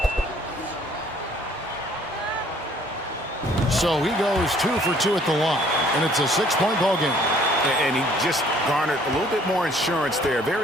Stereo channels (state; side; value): normal; both; correlation 0.58